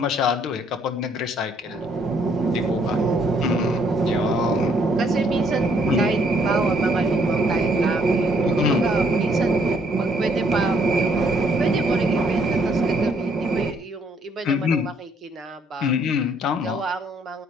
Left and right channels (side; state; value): both; normal; correlation 0.67